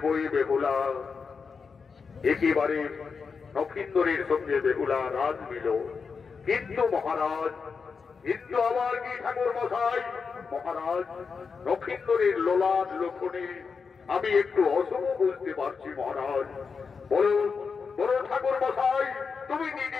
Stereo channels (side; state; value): right; quieter; 5.4 dB